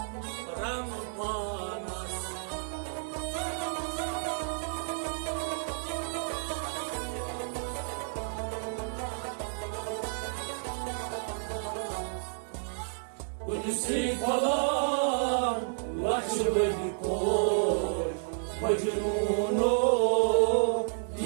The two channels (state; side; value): silent; left; digital silence